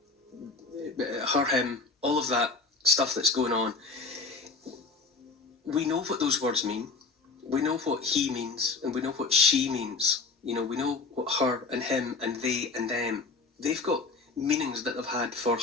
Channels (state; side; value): quieter; right; 4.1 dB